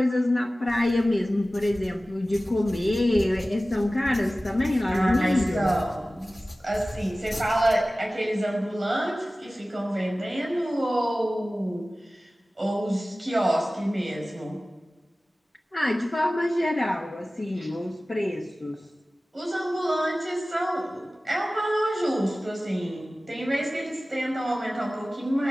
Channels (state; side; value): normal; both; correlation 0.97